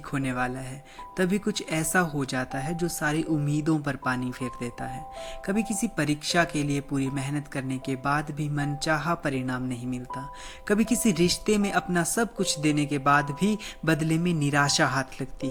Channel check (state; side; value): identical; both; correlation 1.00